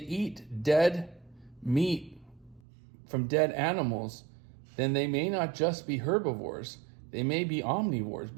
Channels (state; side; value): drops out; left; at 2.6 s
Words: dead meat from dead animals, then they may not just be herbivores. They may be omnivores